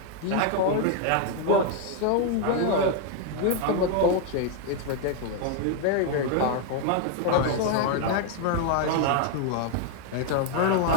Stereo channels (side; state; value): both; different; correlation 0.00